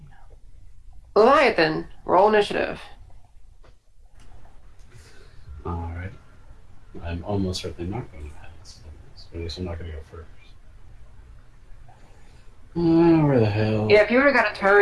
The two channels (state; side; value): identical; both; correlation 1.00